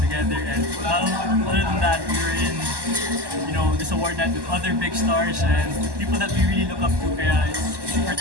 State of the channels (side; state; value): left; late; 1.1 ms